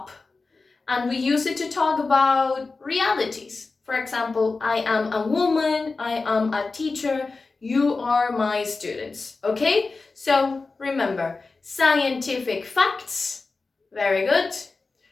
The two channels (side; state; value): right; quieter; 3.9 dB